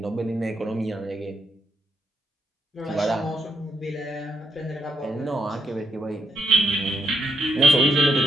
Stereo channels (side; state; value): both; normal; correlation 0.78